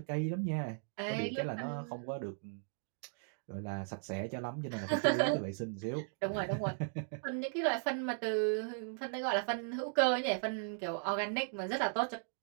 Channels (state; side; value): silent; left; digital silence